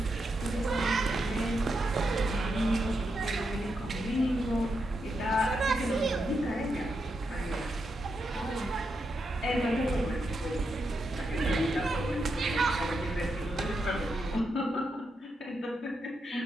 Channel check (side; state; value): both; normal; correlation 0.84